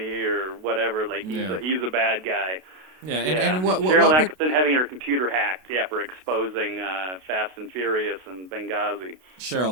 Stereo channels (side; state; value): left; late; 32 ms